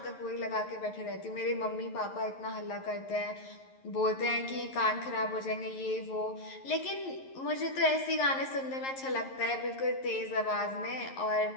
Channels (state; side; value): late; right; 11 ms